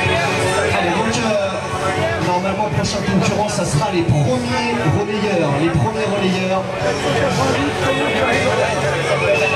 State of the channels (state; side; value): identical; both; correlation 1.00